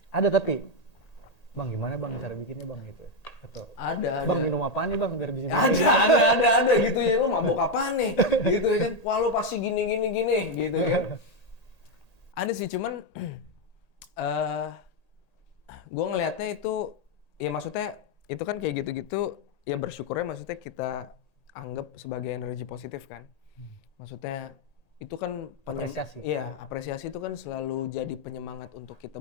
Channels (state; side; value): late; right; 1.8 ms